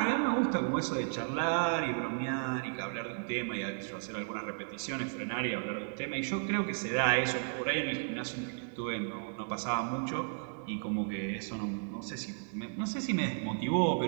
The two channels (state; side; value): silent; left; digital silence